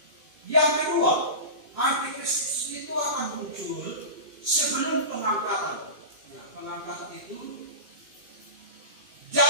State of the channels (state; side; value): late; left; 2.5 ms